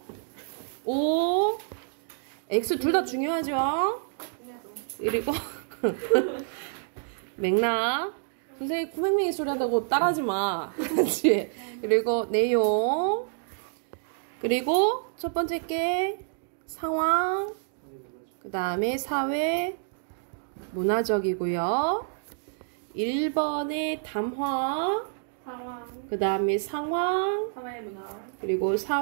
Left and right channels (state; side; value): silent; left; digital silence